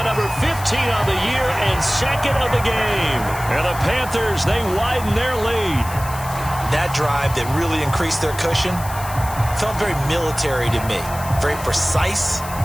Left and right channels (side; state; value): left; noise; hiss, 14 dB below the sound